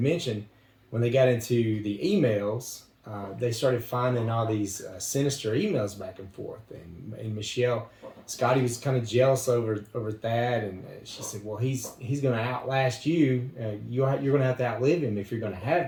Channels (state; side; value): identical; both; correlation 1.00